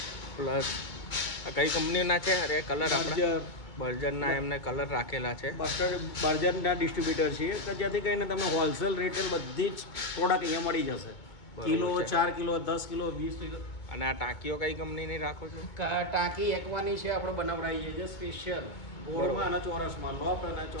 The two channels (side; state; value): right; late; 2.2 ms